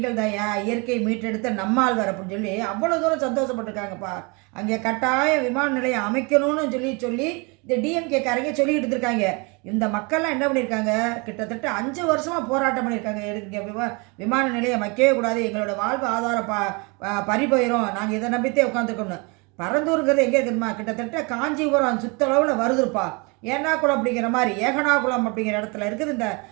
தாயா, இயற்கை மீட்டெடுத்த நம்மாழ்வார் அப்படின்னு சொல்லி அவ்வளோ தூரம் சந்தோஷப்பட்டிருக்காங்கப்பா. அங்கே கட்டாய விமான நிலையம் அமைக்கணும்னு சொல்லி சொல்லி இந்த டிஎம்கே காரங்க சொல்லிக்கிட்டு இருக்காங்க. இந்த மக்கள்லாம் என்ன பண்ணியிருக்காங்க, கிட்டத்தட்ட 5 வருஷமாக போராட்டம் பண்ணியிருக்காங்க. இங்கே விமான நிலையம் வைக்கவே கூடாது, எங்களோட வாழ்வு ஆதாரம் பறிபோயிரும், நாங்கள் இதை நம்பித்தே உட்காந்துருக்கோம்னு. பரந்தூருங்கிறது எங்கே இருக்குதுமா, கிட்டத்தட்ட காஞ்சிபுரம் சுத்தளவில் வருதுப்பா. ஏனாகுளம் அப்படிங்கிற மாதிரி ஏகனாகுளம் அப்படிங்கிற இடத்துல இருக்குது. இந்த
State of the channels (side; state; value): left; quieter; 29.9 dB